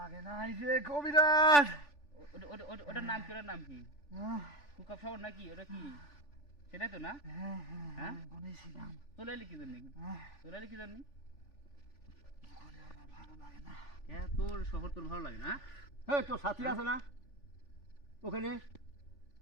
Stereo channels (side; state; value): right; late; 3.5 ms